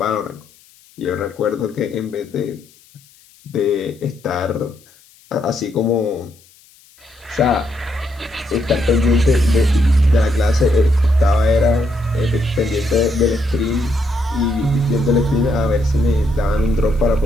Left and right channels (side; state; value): left; noise; hiss, 29 dB below the sound